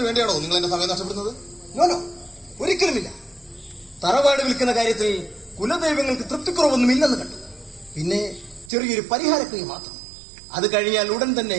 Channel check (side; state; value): left; drops out; at 8.7 s